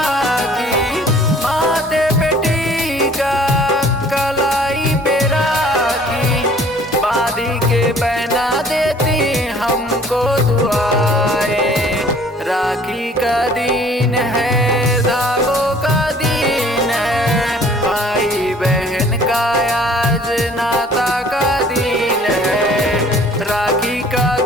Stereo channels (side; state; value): both; normal; correlation 0.54